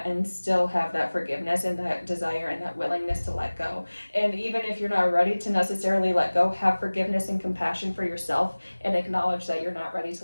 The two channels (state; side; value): inverted; both; correlation -1.00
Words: and still have that forgiveness and that desire and that willingness to let go. And even if you're not ready to necessarily let go, have forgiveness and compassion for yourself and acknowledge that you're not ready